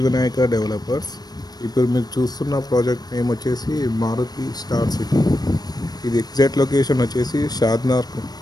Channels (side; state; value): right; late; 0.19 ms